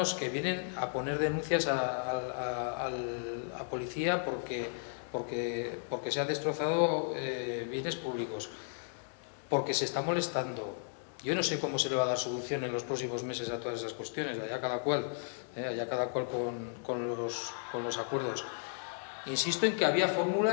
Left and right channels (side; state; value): right; silent; digital silence